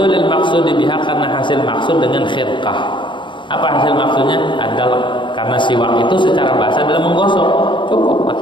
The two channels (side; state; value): right; late; 0.23 ms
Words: maksud biha, karena hasil maksud dengan khirqah. Apa hasil maksudnya? Adalah karena siwak itu secara bahasa adalah menggosok, cukup